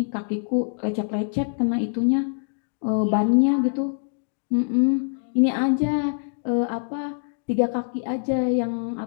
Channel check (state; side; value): silent; right; digital silence